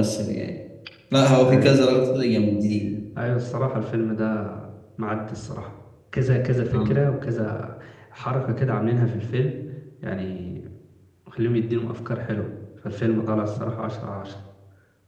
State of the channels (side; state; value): both; identical; correlation 1.00